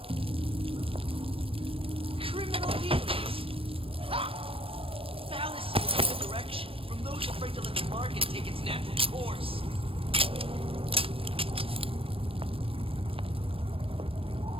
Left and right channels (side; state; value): left; late; 0.27 ms